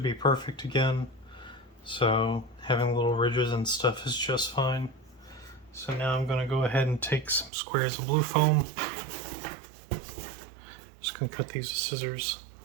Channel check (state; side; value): drops out; left; at 7.5 s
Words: perfect again, so having little ridges and stuff is just fine. So now I'm going to go ahead and take some squares of blue foam. Just going to cut these with scissors.